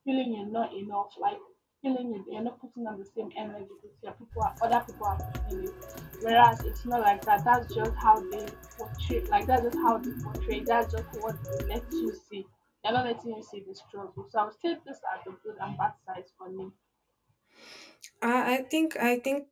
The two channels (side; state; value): both; identical; correlation 1.00